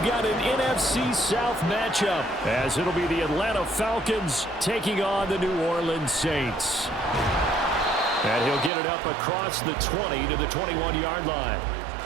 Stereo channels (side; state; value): left; drops out; at 8.7 s